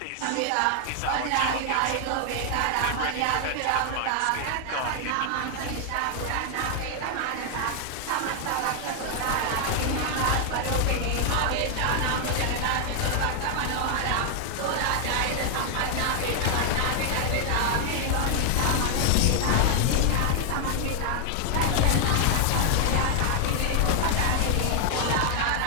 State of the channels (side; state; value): both; different; correlation 0.00